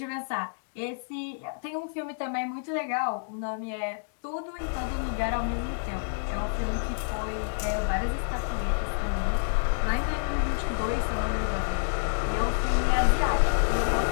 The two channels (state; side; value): silent; right; digital silence